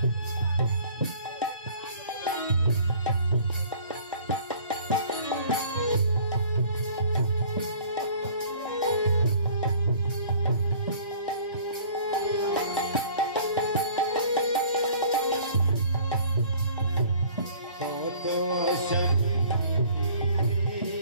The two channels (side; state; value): both; inverted; correlation -0.51